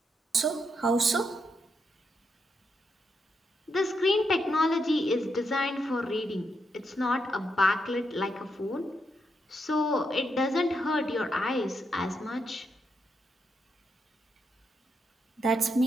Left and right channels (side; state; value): both; normal; correlation 0.81